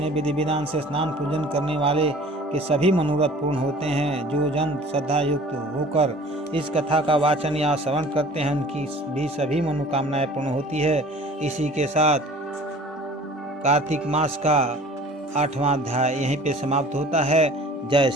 विधि विधान से स्नान पूजन करने वाले के सभी मनोरथ पूर्ण होते हैं। जो जन श्रद्धा युक्त होकर इस कथा का वाचन या श्रवण करते हैं, उनकी भी सभी मनोकामनाएं पूर्ण होती है। इसी के साथ कार्तिक मास का 8वां अध्याय यहीं पे समाप्त होता है। जय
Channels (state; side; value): normal; both; correlation 0.46